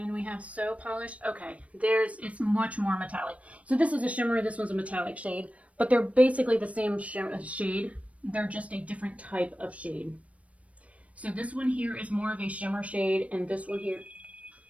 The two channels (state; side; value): late; left; 0.065 ms